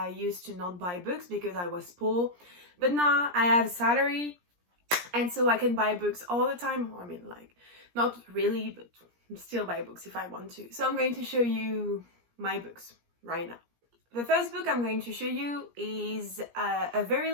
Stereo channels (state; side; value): late; left; 17 ms